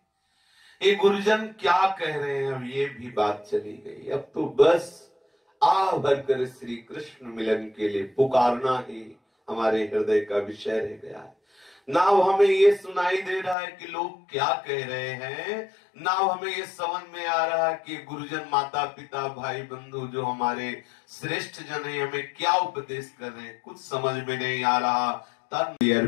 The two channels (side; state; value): right; drops out; at 13.6 s